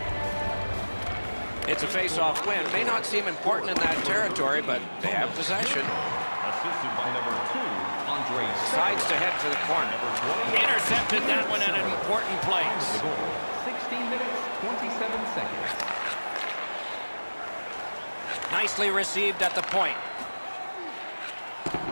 It's a face-off win. May not seem important in that territory, but they have possession. Assisted by number 2, Andre. Sides to head for the corner. Intercepted that one at an important place. The goal, 16 minutes, 27 seconds. Nicely received at the point.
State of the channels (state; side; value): inverted; both; correlation -1.00